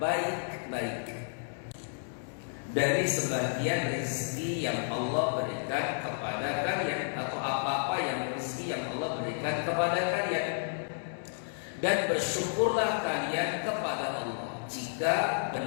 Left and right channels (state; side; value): silent; right; 57 dB below the other